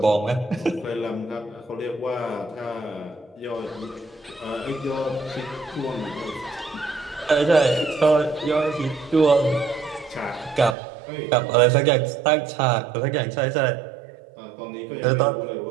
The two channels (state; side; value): drops out; left; at 10.8 s